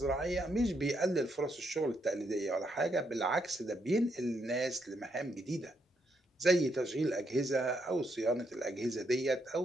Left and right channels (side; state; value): both; normal; correlation 0.77